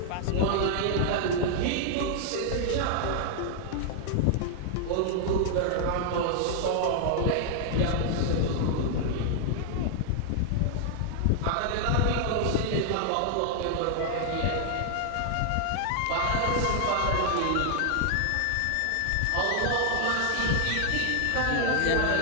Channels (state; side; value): different; both; correlation 0.00